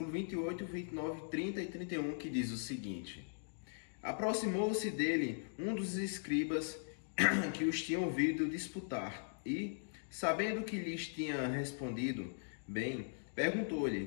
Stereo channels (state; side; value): silent; right; digital silence